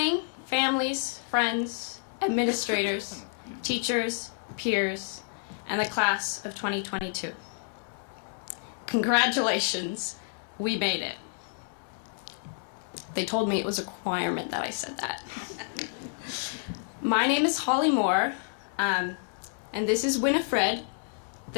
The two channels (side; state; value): right; silent; 58 dB below the other